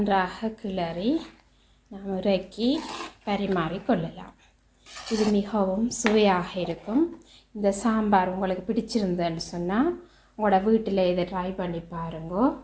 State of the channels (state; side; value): identical; both; correlation 1.00